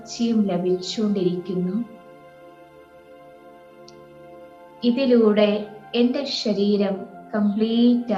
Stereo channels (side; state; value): both; identical; correlation 1.00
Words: ലഭിച്ചുകൊണ്ടിരിക്കുന്നു. ഇതിലൂടെ എൻ്റെ ശരീരം കംപ്ലീറ്റ്